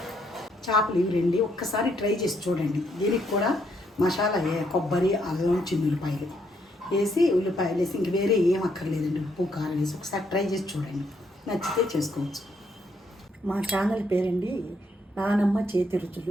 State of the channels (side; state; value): both; normal; correlation 0.73